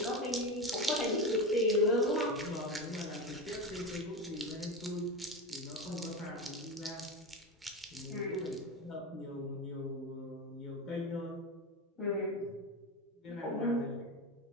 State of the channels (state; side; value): normal; both; correlation 0.19